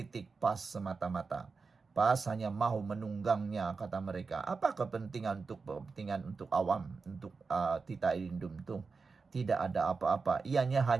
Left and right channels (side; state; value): left; quieter; 4.6 dB